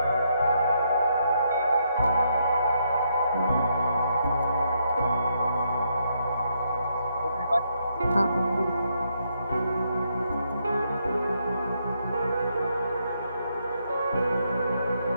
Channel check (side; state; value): both; inverted; correlation -0.77